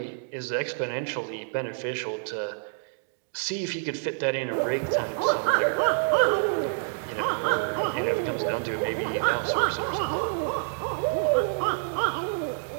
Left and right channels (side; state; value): left; silent; digital silence